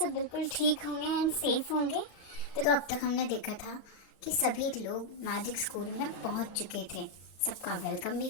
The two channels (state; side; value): late; right; 35 ms